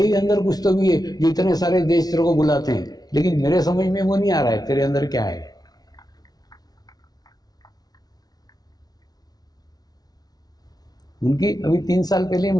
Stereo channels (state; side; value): late; right; 0.19 ms